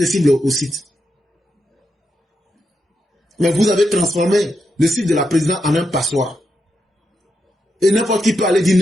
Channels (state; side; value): normal; both; correlation 0.84